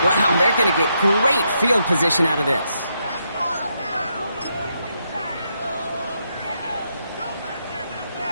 Wow, they're going to get great field position out of this.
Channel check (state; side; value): inverted; both; correlation -0.80